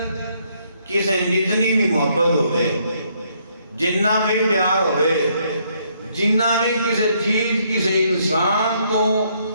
کسے جتنی بھی محبت ہوئے جنہ بھی پیار ہوئے جنہ بھی کسے چیز کسے انسان کو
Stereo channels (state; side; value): inverted; both; correlation -0.70